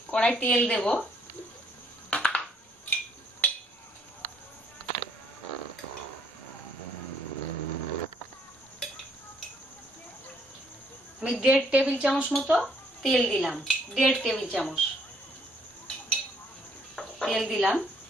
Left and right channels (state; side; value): normal; both; correlation 0.67